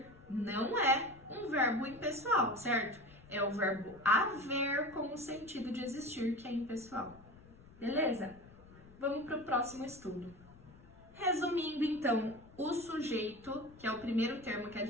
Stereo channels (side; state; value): left; noise; rumble, 22 dB below the sound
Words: não é um verbo impessoal, certo? É o verbo haver com o sentido de existir, que é impessoal. Beleza? Vamos para o próximo estudo. Resumindo, então, o sujeito, que é o primeiro termo que a